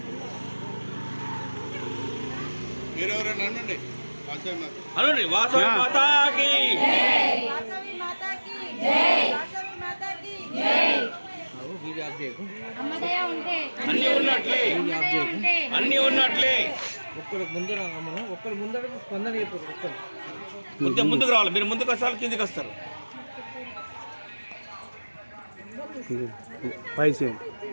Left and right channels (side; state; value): both; inverted; correlation -1.00